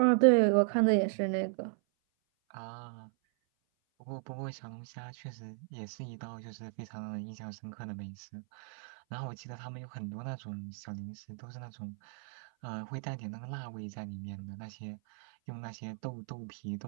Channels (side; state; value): left; silent; 54 dB below the other